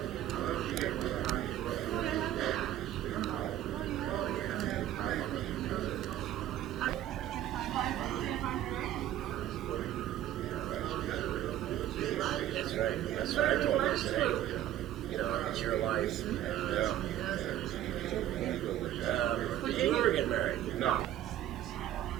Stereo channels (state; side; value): quieter; left; 12.3 dB